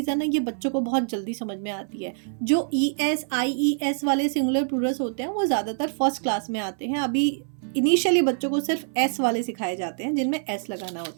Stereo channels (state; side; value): silent; left; 61 dB below the other